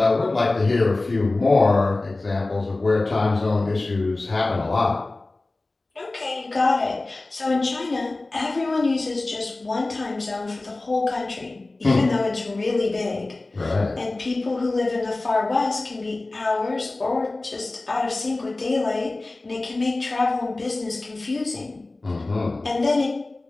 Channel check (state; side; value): quieter; right; 3.1 dB